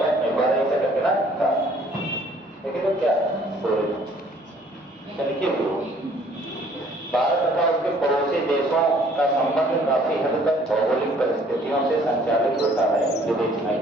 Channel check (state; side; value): normal; both; correlation 0.58